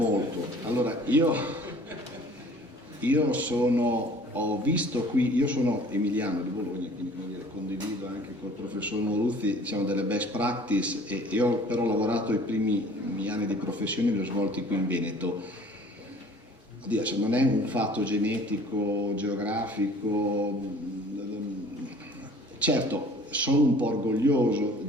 Allora ho visto qui, io sono emiliano di Bologna, quindi condivido anche col professor Moruzzi delle best practice, e io ho però lavorato i primi miei anni di professione, li ho svolti qui in Veneto. Oddio, non è un fatto genetico, geografico, certo sono un po' orgoglioso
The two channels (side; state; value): both; normal; correlation 0.50